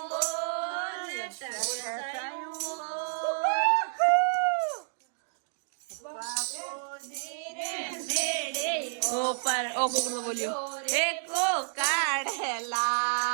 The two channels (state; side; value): silent; left; digital silence